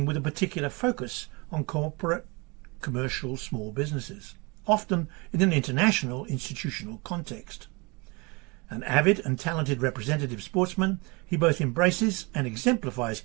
with a particular focus on corporate, commercial, small businesses, often in an international institutional context. An avid and talented representative sportsman, he both embraces and exemplifies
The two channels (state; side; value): quieter; left; 27.8 dB